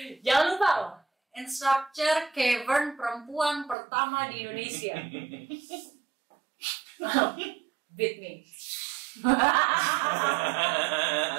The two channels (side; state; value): left; drops out; at 3.8 s